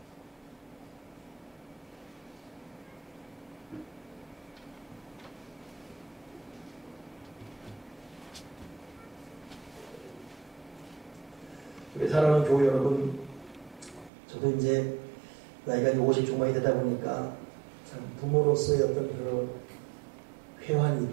우리 사랑하는 교회 여러분, 저도 이제 나이가 50 중반이 되다 보니까 참 부모로서의 어떤 그런 회환이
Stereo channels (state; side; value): drops out; left; at 14.1 s